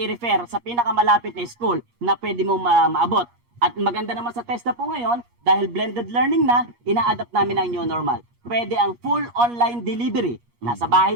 sa pinakamalapit na school na pwede mo maabot. At maganda naman sa TESDA po ngayon, dahil blended learning na, ina-adapt namin ang new normal. Pwede ang full online delivery. Nasa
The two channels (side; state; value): left; late; 8.4 ms